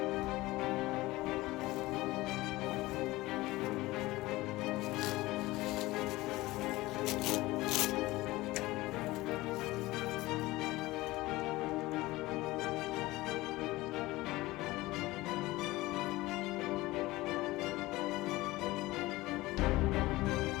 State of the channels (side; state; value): right; quieter; 19.3 dB